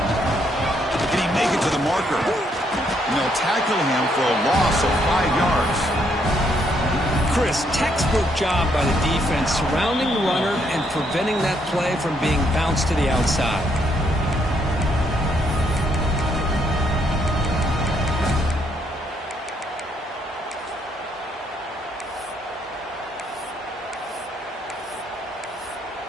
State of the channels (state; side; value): normal; both; correlation 0.73